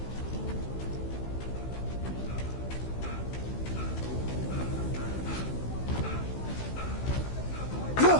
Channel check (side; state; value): right; late; 16 ms